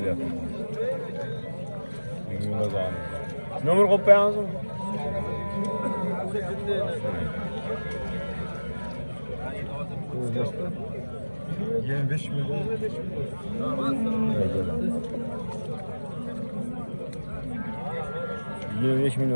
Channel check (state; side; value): inverted; both; correlation -1.00